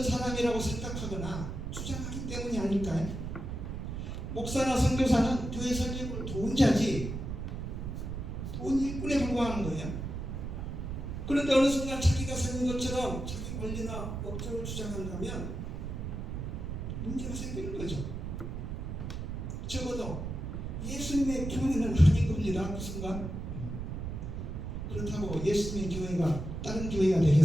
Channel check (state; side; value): noise; right; rumble, 5 dB below the sound